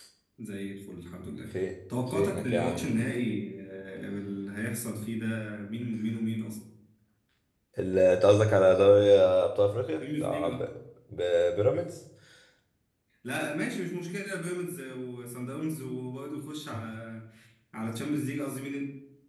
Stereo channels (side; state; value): both; identical; correlation 1.00